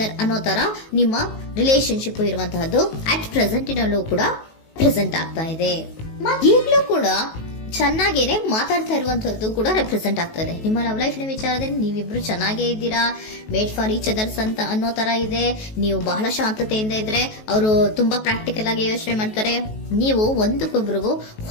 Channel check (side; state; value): right; late; 19 ms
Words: ಅನ್ನೋ ತರ ನಿಮ್ಮ ರಿಲೇಶನ್ಶಿಪ್ ಇರುವಂತಹದ್ದು ಅಟ್ ಪ್ರೆಸೆಂಟಿನಲ್ಲೂ ಕೂಡ ಪ್ರೆಸೆಂಟ್ ಆಗ್ತಾ ಇದೆ. ಈಗಲೂ ಕೂಡ ಚೆನ್ನಾಗೇನೆ ಮಾತಾಡ್ತಾ ಇರುವಂತದ್ದು ಕೂಡ ರೆಪ್ರೆಸೆಂಟ್ ಆಗ್ತದೆ. ನಿಮ್ಮ ಲವ್ ಲೈಫ್ ನ ವಿಚಾರದಲ್ಲಿ ನೀವಿಬ್ರು ಚೆನ್ನಾಗೇ ಇದ್ದೀರಾ, ಮೇಡ್ ಫಾರ್ ಈಚ್ ಅದರ್ಸ್ ಅಂತ ಅನ್ನೋ ತರ ಇದೆ. ನೀವು ಬಹಳ ಶಾಂತತೆಯಿಂದ ಇದ್ರೆ ಅವರು ತುಂಬಾ ಪ್ರಾಕ್ಟಿಕಲ್ ಆಗಿ ಯೋಚನೆ ಮಾಡ್ತಾರೆ. ನೀವು ಒಂದಕ್ಕೊಬ್ರಿಗೂ